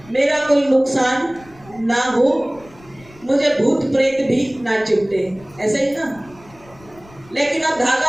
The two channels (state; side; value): noise; left; rumble, 25 dB below the sound